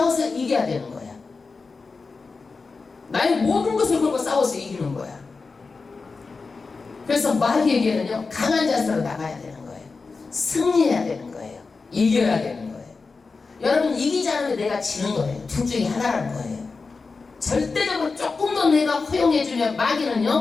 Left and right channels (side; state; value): right; quieter; 4.3 dB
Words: 이겨야 되는 거야. 나의 모든 것을 걸고 싸워서 이기는 거야. 그래서 마귀에게는요 강한 자세로 나가야 되는 거예요. 승리해야 되는 거예요. 이겨야 되는 거예요. 여러분 이기지 않으면 내가 지는 거예요. 둘 중에 하나라는 거예요. 절대적으로 조금 더 내가 허용해주면